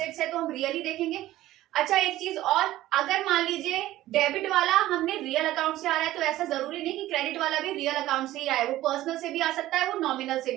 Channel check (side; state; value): left; quieter; 15.3 dB